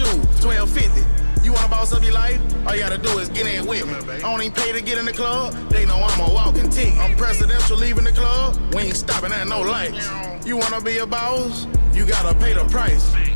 $12.50. You wanna boss up your life? All you gotta do is get in with me. I don't even pay to get in the club. They know I'm a walking tick. I'm presidential leaving the club. We ain't stopping at no lights. You wanna be a boss? You gotta pay the price.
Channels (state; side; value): inverted; both; correlation -1.00